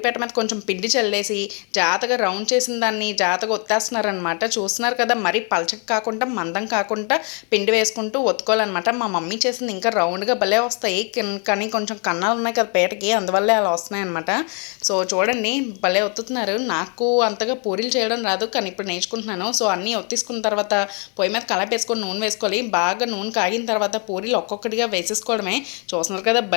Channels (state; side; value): quieter; right; 37.1 dB